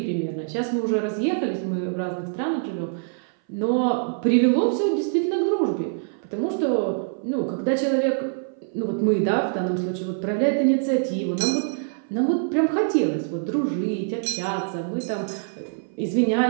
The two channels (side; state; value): left; silent; 58 dB below the other